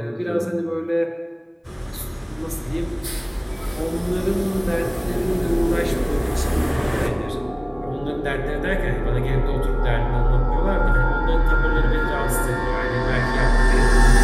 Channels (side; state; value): both; identical; correlation 1.00